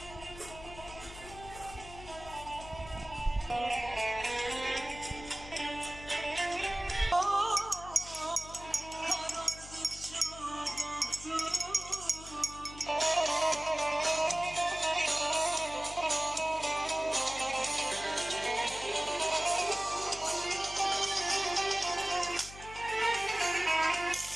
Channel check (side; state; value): left; noise; hum, 15 dB below the sound